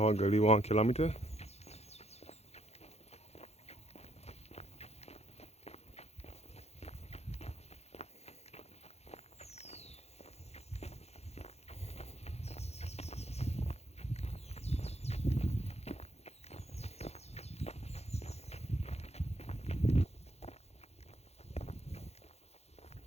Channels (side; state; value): right; late; 0.31 ms